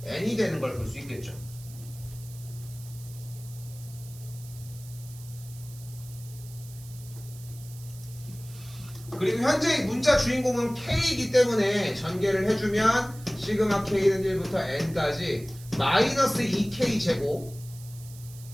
N이 되는 걸 볼 수 있겠죠. 그리고 현재 문자 주인공은 K이기 때문에 전개를 해주면 시그마 K는 1부터 N까지 마이너스 2K 제곱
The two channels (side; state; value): right; noise; hiss, 19 dB below the sound